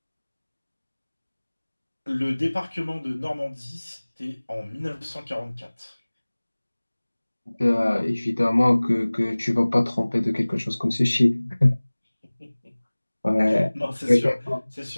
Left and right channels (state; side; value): inverted; both; correlation -1.00